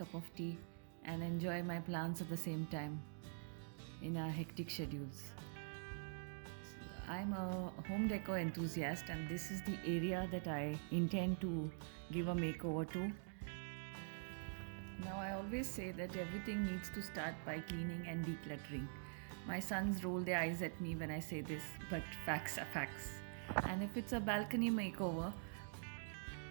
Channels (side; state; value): left; silent; digital silence